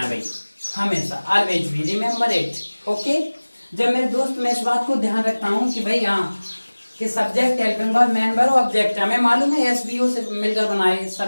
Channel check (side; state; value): both; inverted; correlation -1.00